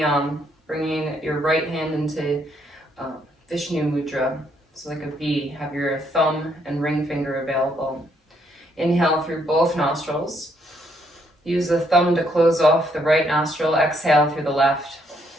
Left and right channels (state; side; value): normal; both; correlation 0.72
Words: bringing your right hand into Vishnu Mudra. So like a V, have your thumb and ring finger available. Inhale through both nostrils. Use the thumb to close off the right nostril. Exhale through the left.